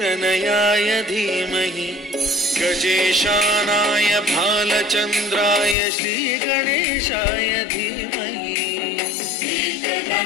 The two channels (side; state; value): right; drops out; at 5.8 s